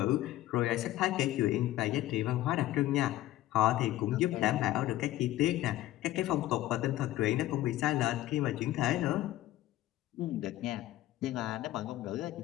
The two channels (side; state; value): right; quieter; 15.1 dB